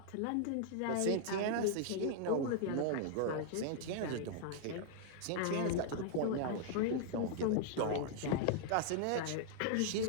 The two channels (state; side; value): different; both; correlation -0.01